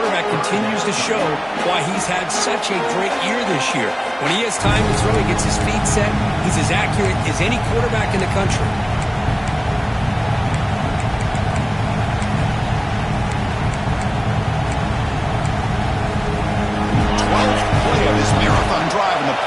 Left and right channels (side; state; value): both; identical; correlation 1.00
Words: continues to show why he's had such a great year this year. When he has time to throw, he gets his feet set. He's as accurate as any quarterback in the country. 12th play of this marathon drive in the